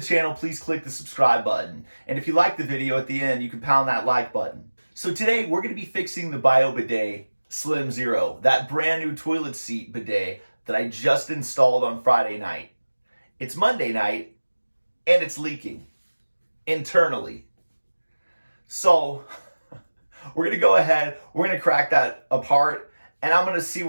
channel, please click the subscribe button. And if you like the video at the end, you can pound that like button. So today we're going to be fixing the Bidet Slim Zero, that brand new toilet seat bidet that I just installed on Friday night. It's Monday night and it's leaking internally. So we're going to go ahead, we're going to crack that apart and I'm going to see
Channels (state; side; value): inverted; both; correlation -1.00